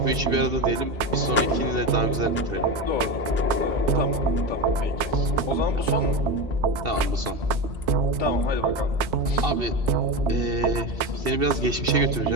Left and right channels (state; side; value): late; left; 2.7 ms